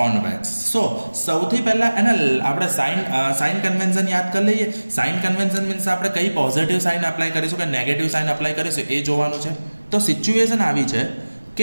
So સૌથી પહેલાં એને આપણે સાઇન કન્વેન્શન યાદ કરી લઈએ. સાઇન કન્વેન્શન મીન્સ આપણે કઈ પોઝિટિવ સાઇન અપ્લાય કરીશું કે નેગેટિવ સાઇન અપ્લાય કરીશું એ જોવાનું છે. તો સિચ્યુએશન આવી છે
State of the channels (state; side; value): inverted; both; correlation -1.00